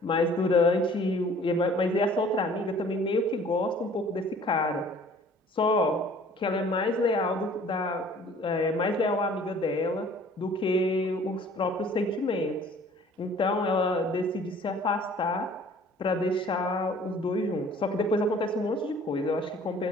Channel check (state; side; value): normal; both; correlation 0.52